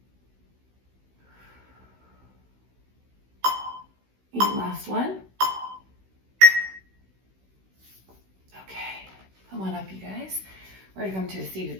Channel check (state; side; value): late; left; 16 ms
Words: And last one. Okay, come on up, you guys. We're gonna come to a seated